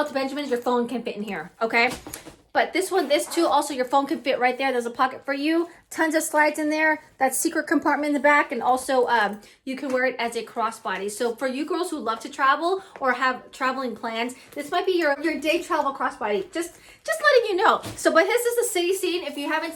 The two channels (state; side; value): identical; both; correlation 1.00